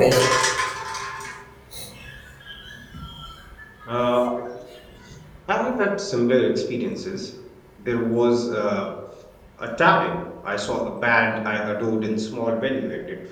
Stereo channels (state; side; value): identical; both; correlation 1.00